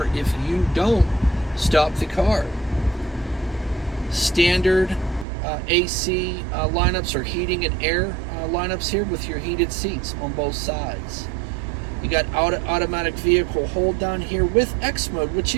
if you don't stop the car. Standard AC lineups or heating and air lineups here with your heated seats on both sides. You got automatic vehicle hold down here with X mode, which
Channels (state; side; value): drops out; left; at 5.2 s